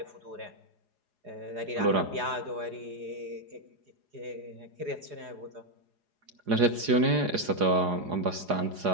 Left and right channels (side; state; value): left; late; 4.8 ms